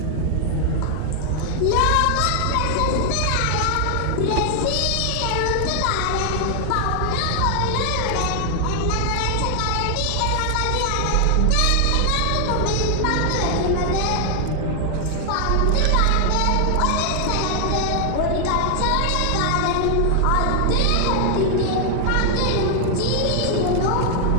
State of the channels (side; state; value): both; different; correlation 0.00